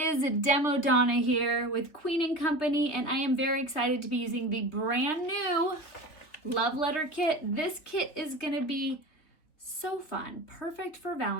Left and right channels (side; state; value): right; late; 3.6 ms